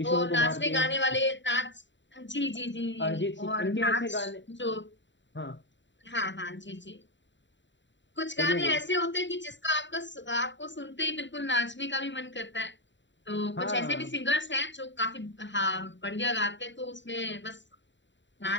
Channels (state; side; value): late; right; 0.53 ms